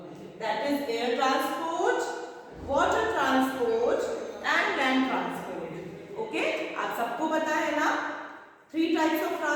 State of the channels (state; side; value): identical; both; correlation 1.00